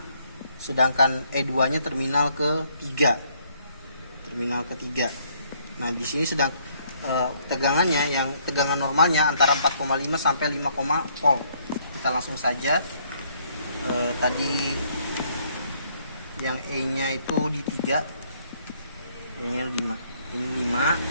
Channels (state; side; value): inverted; both; correlation -0.67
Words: sedangkan E2-nya terminal ketiga. Nah, di sini sedang tegangannya, yang tegangan normalnya antara 4,5 sampai 5, volt. Kita langsung saja, tadi yang E-nya itu di 3, E-nya 5, ini 5